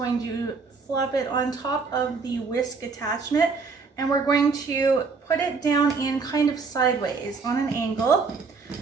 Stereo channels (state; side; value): quieter; left; 4.7 dB